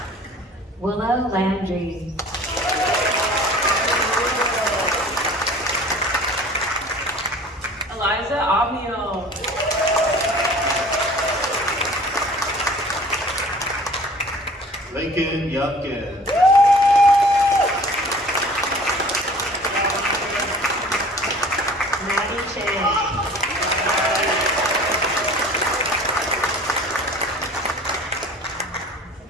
Willow Landry. Eliza Avio. Lincoln Youngkin. Maddie Chang.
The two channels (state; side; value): normal; both; correlation 0.46